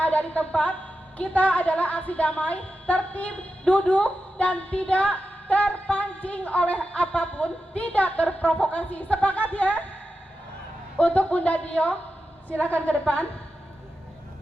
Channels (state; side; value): normal; both; correlation 0.91